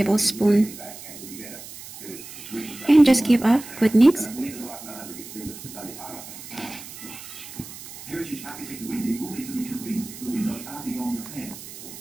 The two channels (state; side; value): noise; right; hiss, 14 dB below the sound